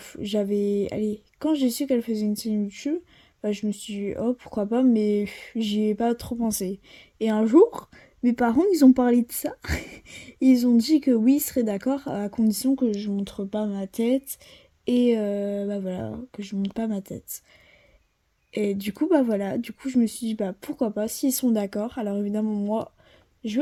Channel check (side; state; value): both; identical; correlation 1.00